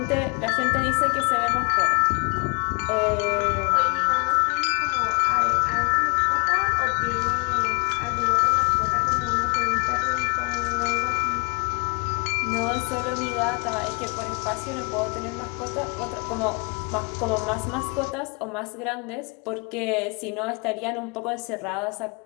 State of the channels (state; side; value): quieter; right; 31.9 dB